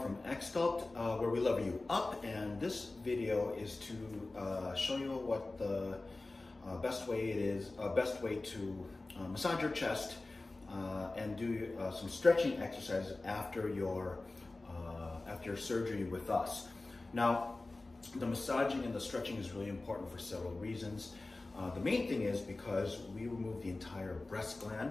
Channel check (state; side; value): quieter; right; 3.1 dB